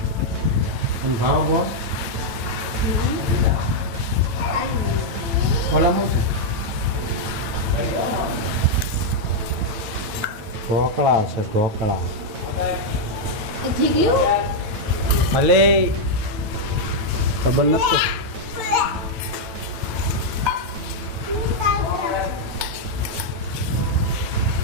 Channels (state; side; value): late; left; 9.2 ms